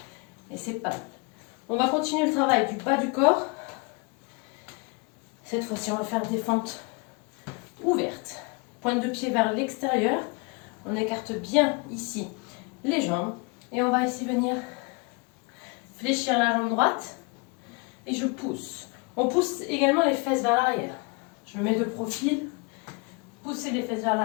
Et c'est pas mal. On va continuer le travail du bas du corps. Cette fois-ci, on va faire des fentes ouvertes. Pointe de pied vers l'extérieur. On écarte bien ici les jambes. Et on va ici venir fléchir la jambe droite. Et je pousse. On pousse également les fesses vers l'arrière. Je me mets de profil. Poussez les fesses vers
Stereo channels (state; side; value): quieter; right; 30.5 dB